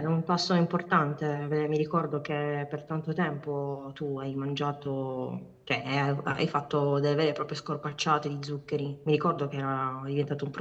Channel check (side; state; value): both; identical; correlation 1.00